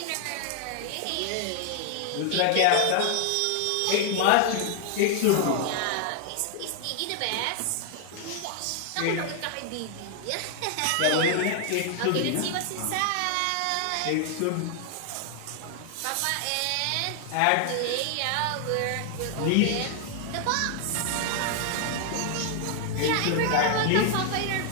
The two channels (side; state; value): both; different; correlation 0.00